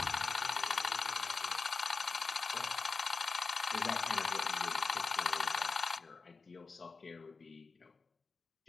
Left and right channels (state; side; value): quieter; right; 4.4 dB